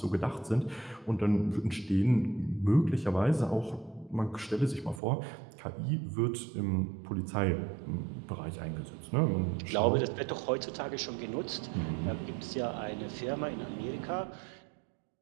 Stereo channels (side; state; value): left; drops out; at 5.0 s